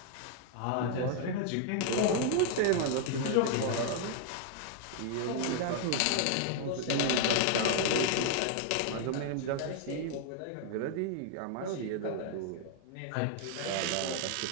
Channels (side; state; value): both; different; correlation 0.00